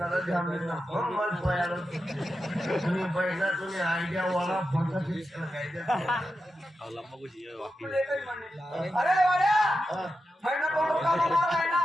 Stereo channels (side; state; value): both; normal; correlation 0.90